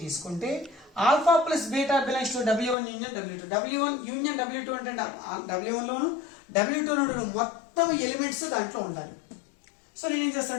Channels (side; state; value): right; drops out; at 2.8 s